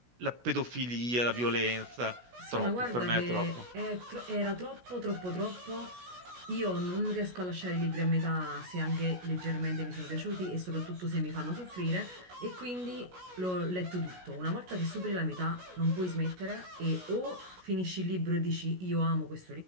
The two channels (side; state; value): left; late; 16 ms